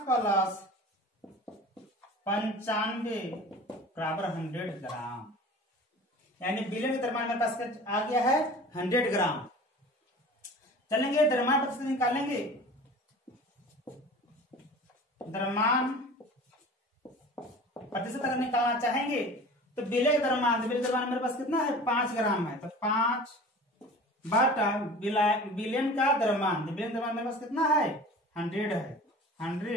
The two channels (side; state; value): both; normal; correlation 0.40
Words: प्लस 95 बराबर 100 ग्राम, यानी विलयन का द्रव्यमान मेरे पास आ गया है 100 ग्राम। चलेंगे द्रव्यमान प्रतिशत निकालेंगे। द्रव्यमान प्रतिशत अगर निकालना चाहेंगे तो विलय द्रव्यमान मेरे पास कितना है? 5 ग्राम है। तो 5 बटा विलयन का द्रव्यमान, विलयन द्रव्यमान मेरे पास कितना है? 100 है।